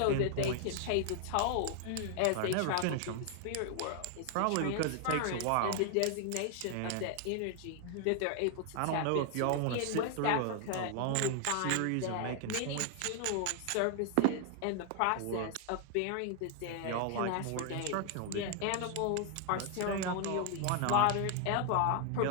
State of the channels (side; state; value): both; different; correlation 0.00